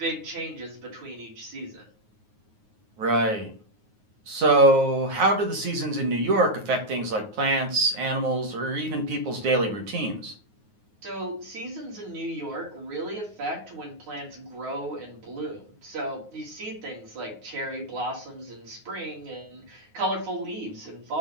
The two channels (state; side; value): late; left; 9.5 ms